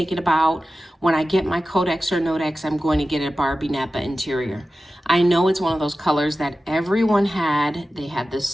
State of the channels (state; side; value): normal; both; correlation 0.94